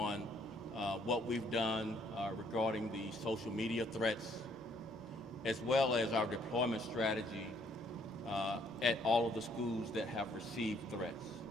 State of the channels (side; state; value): both; normal; correlation 0.66